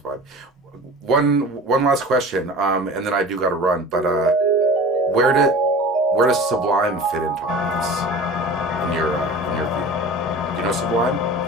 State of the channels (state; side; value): normal; both; correlation 0.38